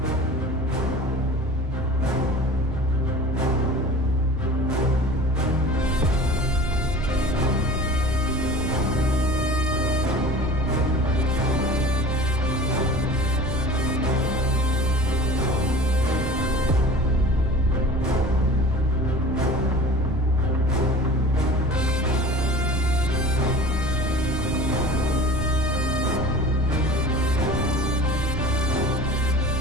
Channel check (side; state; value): both; normal; correlation 0.40